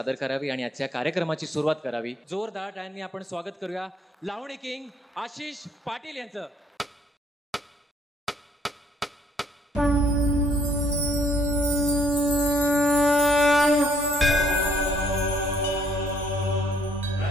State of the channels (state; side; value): normal; both; correlation 0.65